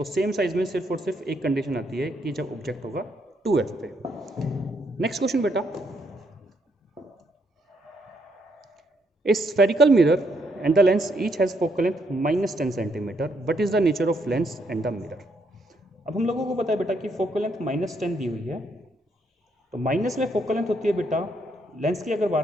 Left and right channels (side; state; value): both; normal; correlation 0.74